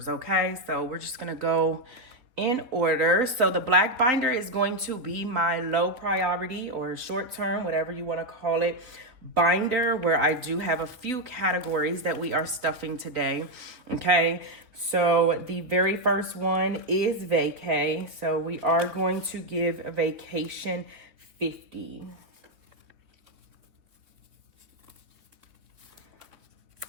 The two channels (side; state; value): left; late; 3.9 ms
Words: okay? So we're just going to go in order. So the black binder is going to be my low priority or short term, whatever you want to call it, binder, where I do have a few categories that we are stuffing today. Okay, so the very first one is vacay. So we are going to give a vacation 50.